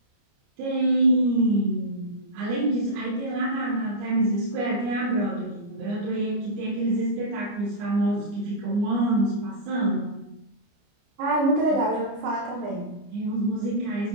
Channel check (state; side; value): late; left; 29 ms